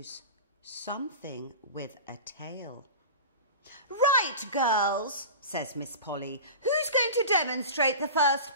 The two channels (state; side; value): inverted; both; correlation -0.33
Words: Something with a tail. Right, girls, says Miss Polly. Who's going to demonstrate the first